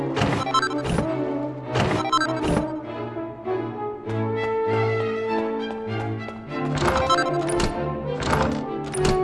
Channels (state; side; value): identical; both; correlation 1.00